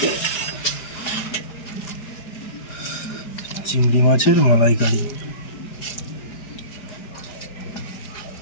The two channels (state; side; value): late; right; 4.9 ms